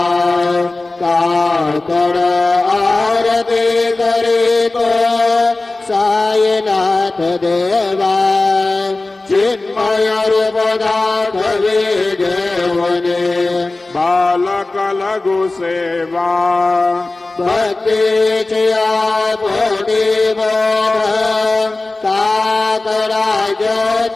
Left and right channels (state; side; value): quieter; right; 3.1 dB